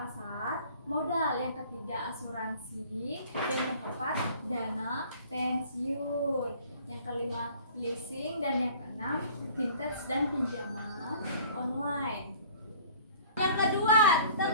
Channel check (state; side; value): inverted; both; correlation -0.50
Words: modal, yang ketiga asuransi, dan yang keempat dana pensiun, yang kelima leasing, dan yang keenam vintage dan pinjaman online. Yang kedua